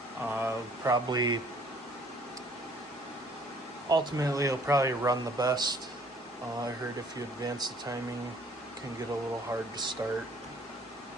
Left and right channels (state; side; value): normal; both; correlation 0.58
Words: probably, ultimately it'll probably run the best. I heard if you advance the timing, it can get a little hard to start.